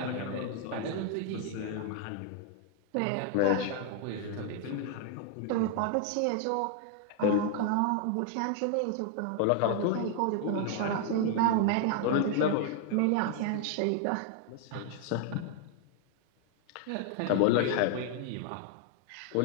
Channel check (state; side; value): different; both; correlation 0.00